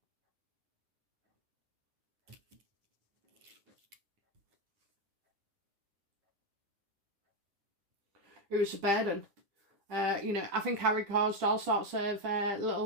It was a burden. You know, I think Harry caused all sorts of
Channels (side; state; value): left; late; 9.9 ms